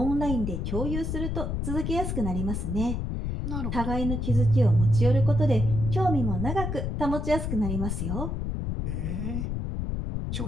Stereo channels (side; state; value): left; noise; rumble, 2 dB below the sound